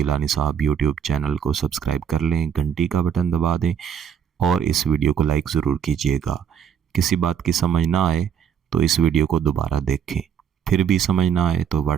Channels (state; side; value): quieter; left; 8.2 dB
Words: صاحب یوٹیوب چینل کو سبسکرائب کر لیں، گھنٹی کا بٹن دبا دیں اور اس ویڈیو کو لائک ضرور کیجیے گا۔ کسی بات کی سمجھ نہ آئے تو اس ویڈیو کو دوبارہ دیکھیں، پھر بھی سمجھ نہ آئے تو